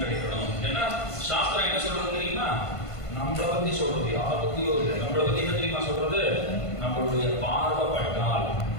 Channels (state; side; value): late; right; 1.5 ms